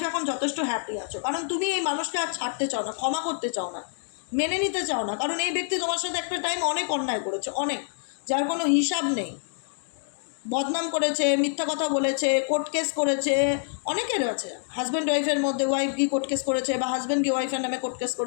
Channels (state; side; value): silent; right; digital silence